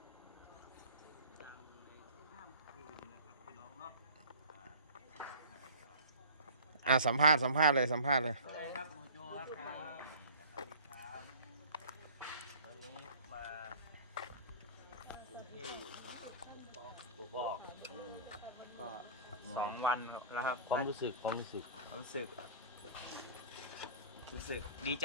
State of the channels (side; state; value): both; inverted; correlation -0.41